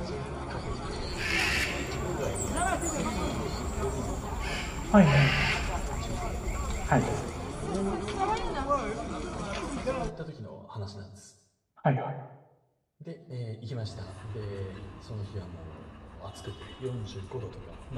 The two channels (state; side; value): identical; both; correlation 1.00